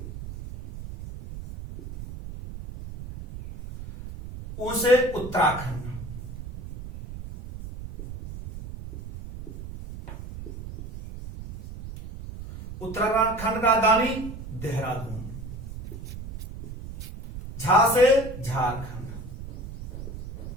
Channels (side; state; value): right; noise; rumble, 10 dB below the sound